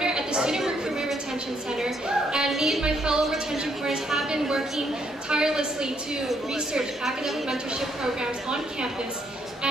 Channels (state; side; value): normal; both; correlation 0.72